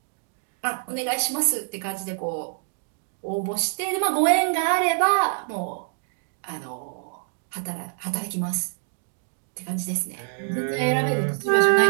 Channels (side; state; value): left; silent; 60 dB below the other